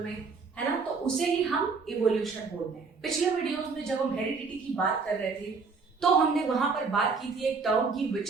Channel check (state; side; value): quieter; left; 4.8 dB